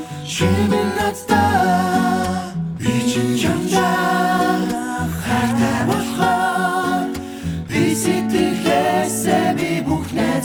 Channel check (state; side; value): identical; both; correlation 1.00